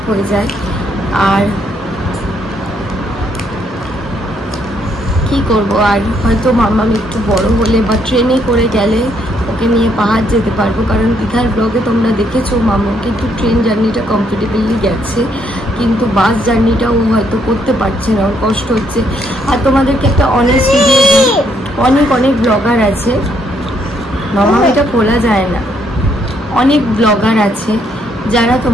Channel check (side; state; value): both; normal; correlation 0.71